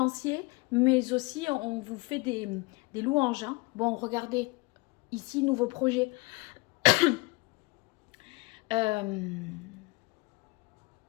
mais aussi on vous fait des louanges. Hein. Bon, regardez, ici, nouveau projet.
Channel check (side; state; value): right; quieter; 25.9 dB